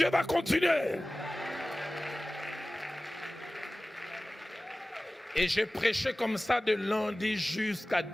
va continuer. Et j'ai prêché comme ça de lundi jusqu'à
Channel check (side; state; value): both; normal; correlation 0.97